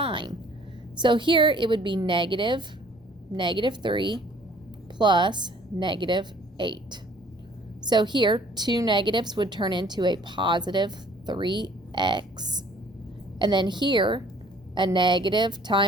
So here it would be negative 3 plus negative 8. So here, two negatives would turn into a positive 3x. And then here, a negative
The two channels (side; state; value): both; normal; correlation 0.55